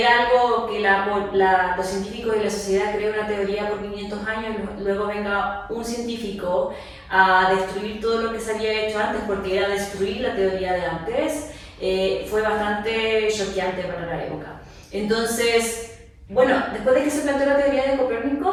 algo que los científicos y la sociedad creen una teoría por 500 años, luego venga un científico a destruir todo lo que se había hecho antes, porque era destruir la teoría de antes, fue bastante choqueante para la época. Entonces, bueno, después de que se planteó la teoría de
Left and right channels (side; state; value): both; identical; correlation 1.00